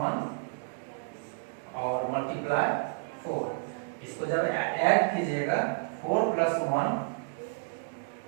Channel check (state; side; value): silent; left; digital silence